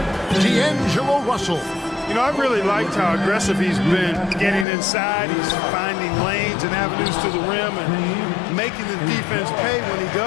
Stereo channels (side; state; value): right; drops out; at 4.7 s